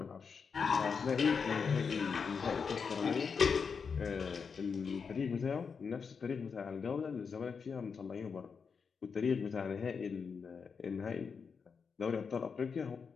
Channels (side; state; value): right; quieter; 5.8 dB